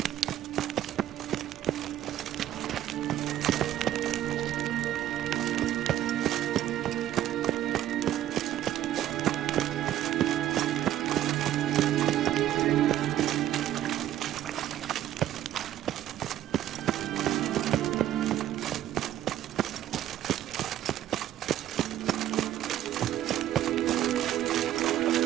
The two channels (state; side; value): quieter; left; 12.4 dB